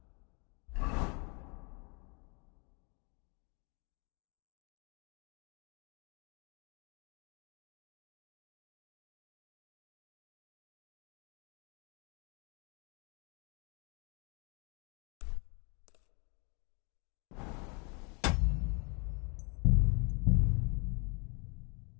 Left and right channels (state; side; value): quieter; right; 33.0 dB